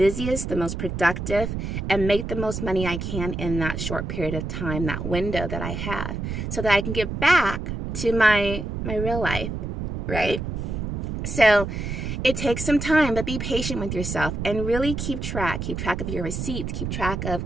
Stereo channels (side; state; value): right; noise; rumble, 4 dB below the sound